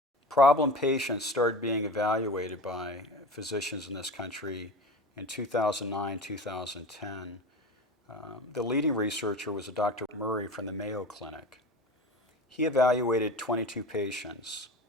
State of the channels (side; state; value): both; normal; correlation 0.32